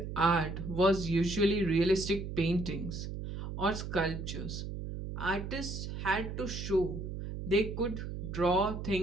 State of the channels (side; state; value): right; noise; hum, 6 dB below the sound